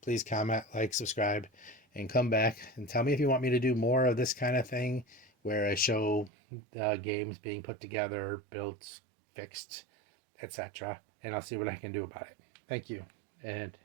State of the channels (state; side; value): drops out; left; at 6.3 s